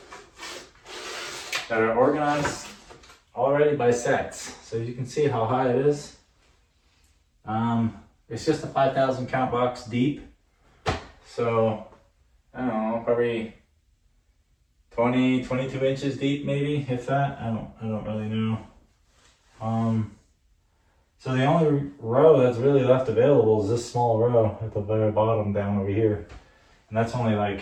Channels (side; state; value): both; identical; correlation 1.00